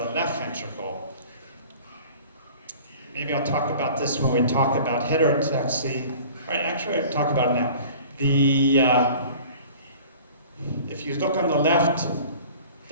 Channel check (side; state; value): both; inverted; correlation -0.45